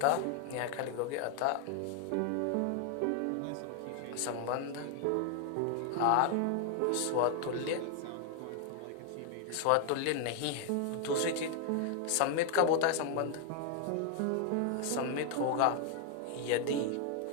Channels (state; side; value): different; both; correlation 0.00